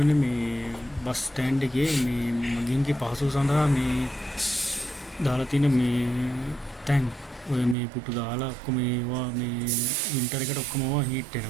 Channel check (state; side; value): drops out; left; at 7.8 s